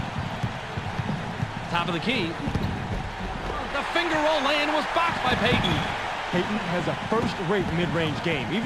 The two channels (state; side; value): identical; both; correlation 1.00